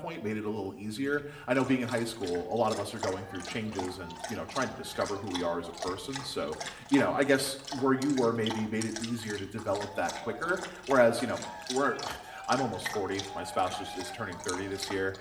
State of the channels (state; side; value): identical; both; correlation 1.00